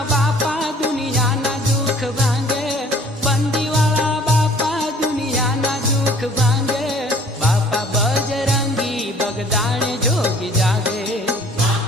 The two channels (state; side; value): normal; both; correlation 0.54